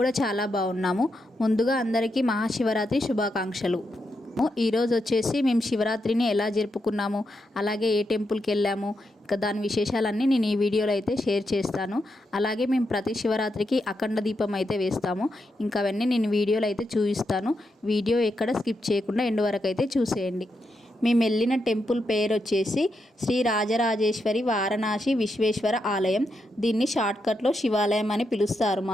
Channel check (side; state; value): both; normal; correlation 0.84